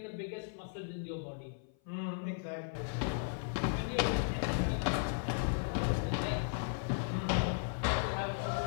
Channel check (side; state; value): right; silent; 54 dB below the other